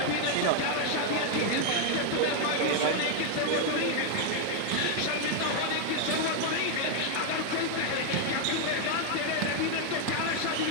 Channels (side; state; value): both; different; correlation 0.01